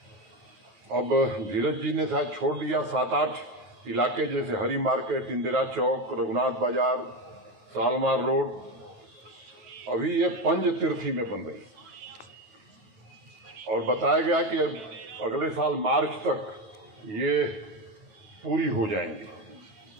अब धीरज जी ने शायद छोड़ दिया 7-8 इलाके, जैसे हरी मार्केट, इंदिरा चौक, रघुनाथ बाजार, सालमार रोड, अभी ये पंज तीर्थी में बन रही, और बताया गया कि अगले साल मार्च तक ये पूरी हो जाएंगी।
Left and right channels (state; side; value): late; left; 9.0 ms